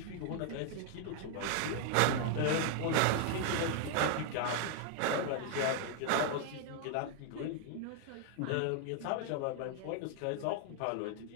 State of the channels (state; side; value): different; both; correlation 0.00